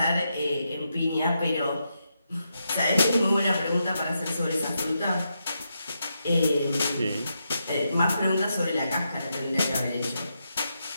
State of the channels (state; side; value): inverted; both; correlation -0.84